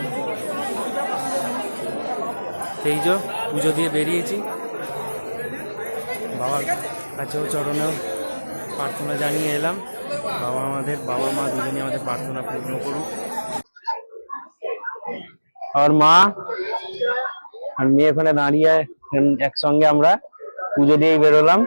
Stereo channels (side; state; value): both; inverted; correlation -1.00